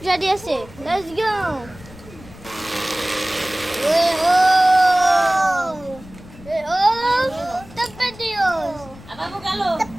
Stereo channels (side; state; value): left; noise; rumble, 19 dB below the sound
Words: রেডি আছে। Let's go. tapatio. Ababu galo.